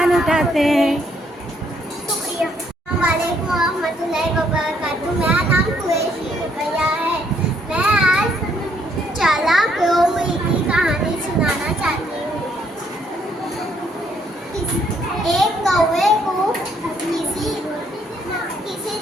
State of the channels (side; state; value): both; normal; correlation 0.69